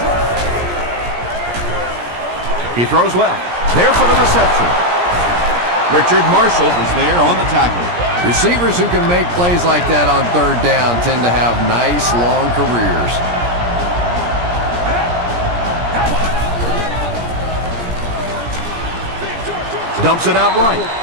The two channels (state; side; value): late; left; 17 ms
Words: He throws left. There for the reception. Richard Marshall was there on the tackle. Receivers who can make plays like that on 3rd down tend to have nice long careers. Dumps it out right.